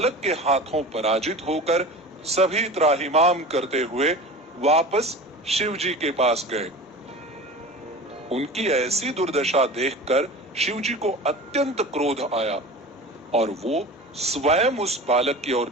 के हाथों पराजित होकर सभी त्राहिमाम करते हुए वापस शिवजी के पास गए। उनकी ऐसी दुर्दशा देखकर शिवजी को अत्यंत क्रोध आया और वो स्वयं उस बालक की ओर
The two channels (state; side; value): normal; both; correlation 0.34